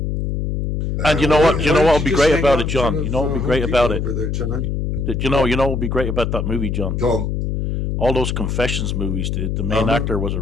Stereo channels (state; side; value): noise; left; hum, 1 dB below the sound